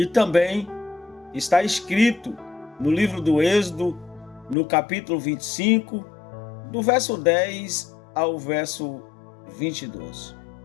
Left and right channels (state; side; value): drops out; right; at 4.5 s